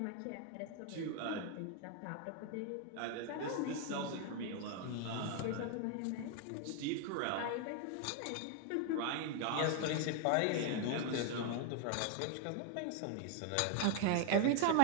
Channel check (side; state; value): both; different; correlation 0.01